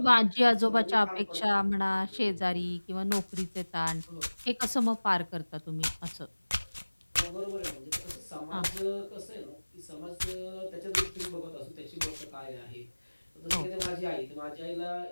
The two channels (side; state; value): both; inverted; correlation -1.00